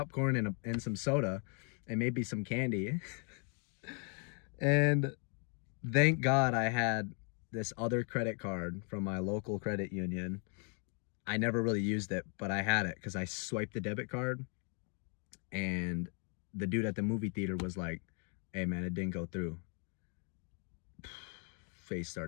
and some soda and maybe some candy. And thank God I had this other credit card from my local credit union. I never really used it, but I had it because I swiped the debit card, and the dude at the movie theater was like, "Hey man, it didn't go through." Face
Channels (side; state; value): right; quieter; 39.5 dB